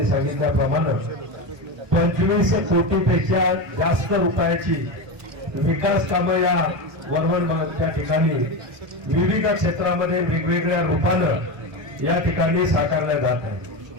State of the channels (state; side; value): late; left; 1.2 ms